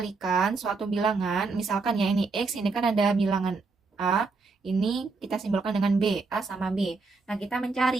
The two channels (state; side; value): quieter; left; 4.2 dB